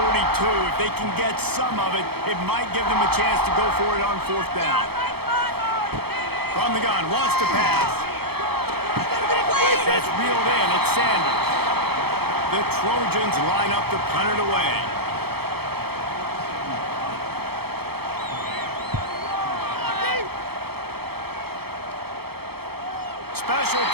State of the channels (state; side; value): late; left; 0.96 ms